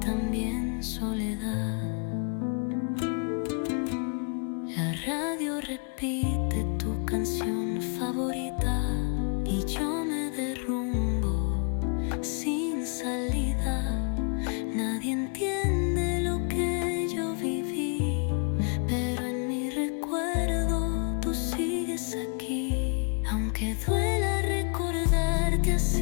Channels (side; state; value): right; quieter; 39.8 dB